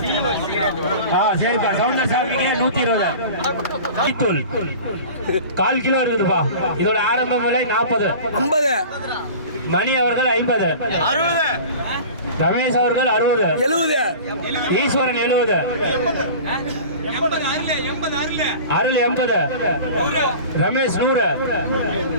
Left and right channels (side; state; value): both; inverted; correlation -0.38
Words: சரிப்பா. சவுந்தர் சாமிக்கு 120 தூள் 1/4 கிலோ இருக்குதுப்பா. இதோட ஆரம்ப விலை 40 50. மணி அவர்கள் 50 60. ரமேஷ் அவர்கள் 60 70. ஈஸ்வரன் 70 அருள் 80 ரமேஷ் 100